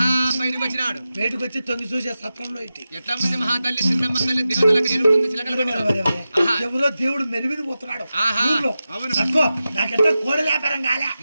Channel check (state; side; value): inverted; both; correlation -0.92